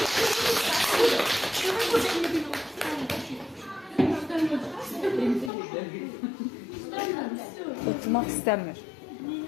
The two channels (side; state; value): right; drops out; at 5.5 s